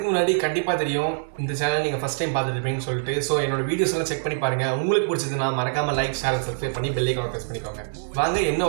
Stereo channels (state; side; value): silent; left; digital silence